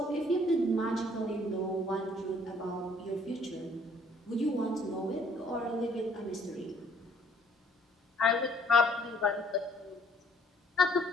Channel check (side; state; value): both; normal; correlation 0.61